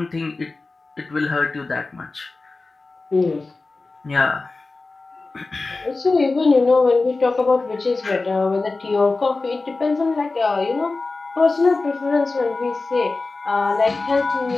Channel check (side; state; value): right; quieter; 3.6 dB